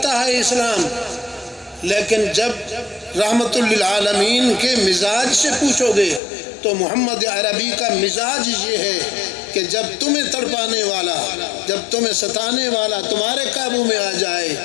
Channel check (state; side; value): drops out; right; at 6.2 s